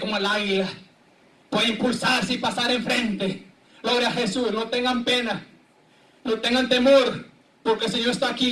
el águila. Pueden impulsarse y pasar enfrente. Gloria a Jesús. No tengan pena. No tengan temor, porque el Señor está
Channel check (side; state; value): both; identical; correlation 1.00